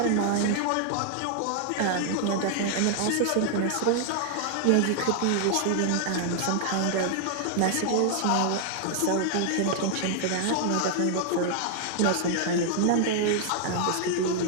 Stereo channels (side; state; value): both; different; correlation 0.00